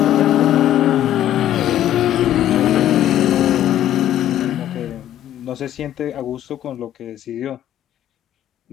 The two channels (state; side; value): quieter; right; 12.2 dB